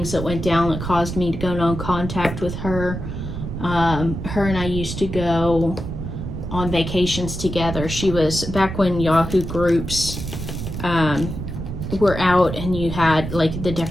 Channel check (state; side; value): noise; right; rumble, 6 dB below the sound